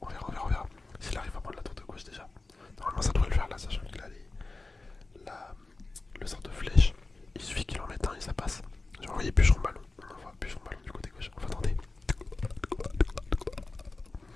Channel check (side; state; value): right; quieter; 3.4 dB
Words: S'il arrive à prendre la tour de gauche déjà. Normalement, ça devrait le faire là, sachant qu'il a le sort de flèche. Il suffit qu'il en mette un et ça passe. J'ai envoyé bûcheron ballon. On envoie bûcheron ballon du côté gauche. On va tenter.